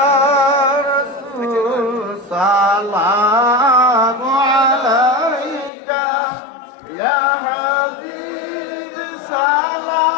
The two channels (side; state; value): right; drops out; at 5.7 s